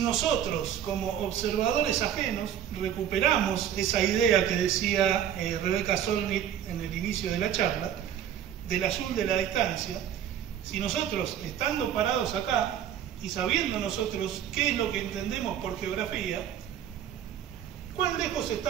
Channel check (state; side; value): quieter; left; 9.9 dB